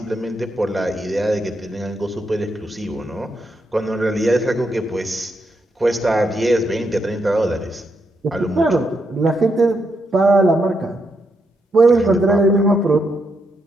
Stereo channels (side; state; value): both; normal; correlation 0.80